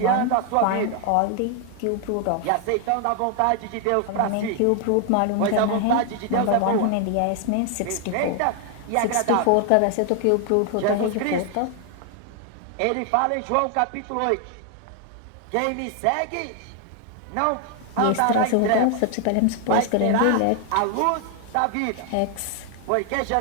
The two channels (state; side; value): different; both; correlation 0.00